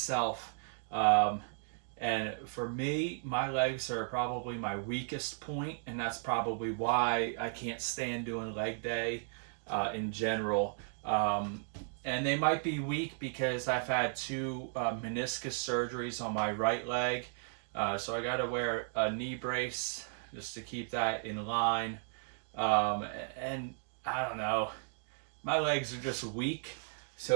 And for me, my legs are probably my weakest point, and that's probably why I can't stand doing leg day in general. And they might be weak because I've had two meniscus surgeries on my right leg. So I got to wear a knee brace just to keep that in line. And I don't know, my legs are just weak.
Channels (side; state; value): left; silent; digital silence